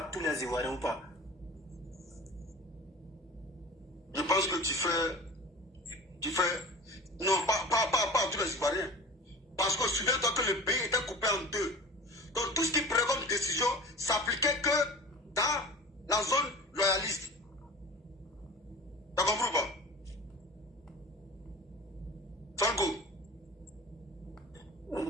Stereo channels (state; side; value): normal; both; correlation 0.37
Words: tous les Ivoiriens ou pas? Je pense que tu fais, non, pas à tous les Ivoiriens. Parce que souviens-toi que le pays était coupé en deux. Donc tout ce qui prenait comme décision s'appliquait que dans la zone loyaliste. T'as compris ou pas? Franco.